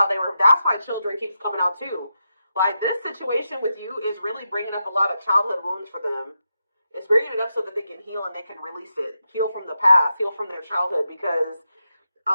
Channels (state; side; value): inverted; both; correlation -0.87